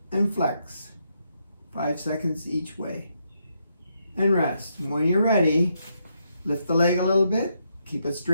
and flex. 5 seconds each way. And rest. And when you're ready, lift the leg a little bit, keep it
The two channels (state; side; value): inverted; both; correlation -0.79